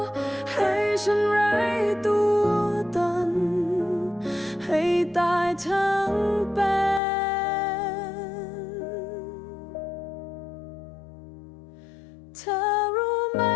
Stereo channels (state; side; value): drops out; right; at 7.0 s